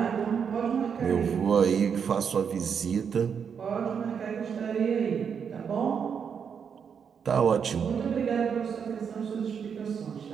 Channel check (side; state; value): left; quieter; 7.0 dB